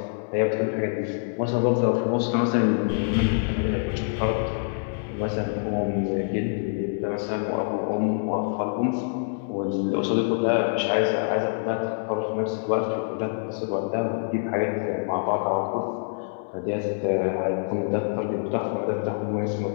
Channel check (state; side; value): silent; right; 61 dB below the other